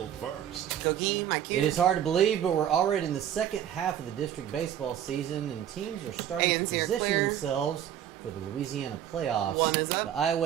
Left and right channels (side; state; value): left; quieter; 10.4 dB